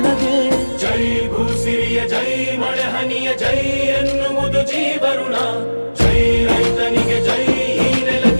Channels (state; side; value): inverted; both; correlation -1.00